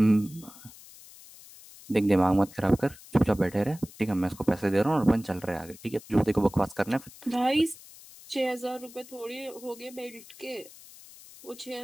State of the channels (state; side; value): noise; left; hiss, 20 dB below the sound